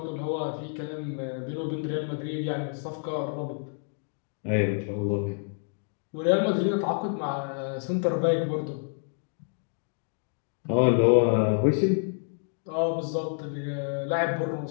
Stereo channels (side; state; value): right; silent; 59 dB below the other